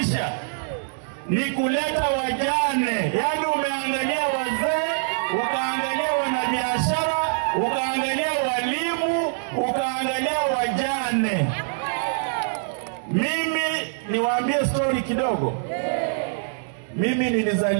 ni kuleta wajane. Yaani umeangalia wazee, ukaangalia wanabiashara, ukaangalia walimu, ukaangalia wajane. Mimi niwaambie story kidogo. Mimi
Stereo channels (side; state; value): left; silent; digital silence